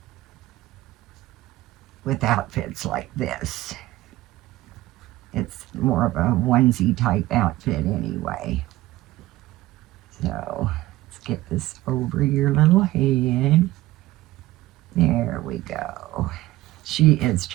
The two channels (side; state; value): left; quieter; 17.1 dB